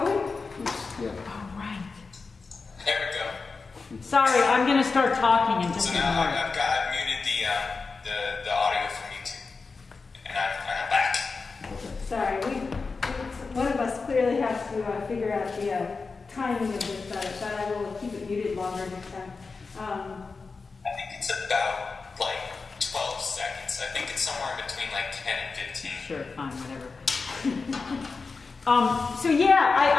yeah. oh, right. There we go. Sorry, I'm gonna start talking in just So a now moment. I've muted the audio from YouTube, and I'm back. Sorry, one of us clearly has to figure out the timing of this, but I will keep it muted longer next time. I think it's about like 12 seconds. I think it's somewhere in between like 10 and 15. Sure, fine, whatever. So yeah,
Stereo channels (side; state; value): right; quieter; 4.4 dB